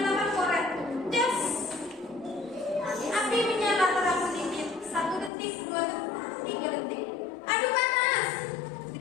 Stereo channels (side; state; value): right; drops out; at 5.3 s